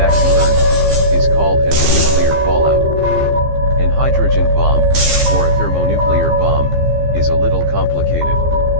to Earth, is called as a nuclear fallout. An hydrogen bomb, or a thermonuclear bomb, is a little complicated.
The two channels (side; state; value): left; late; 15 ms